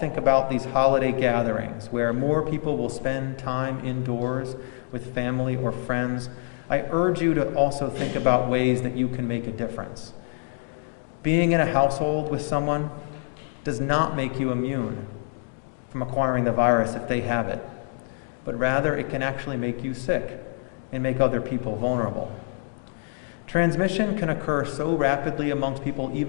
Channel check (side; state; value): right; silent; 61 dB below the other